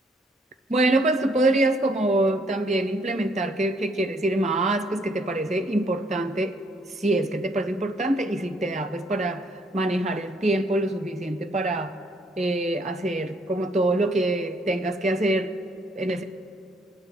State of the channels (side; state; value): both; normal; correlation 0.67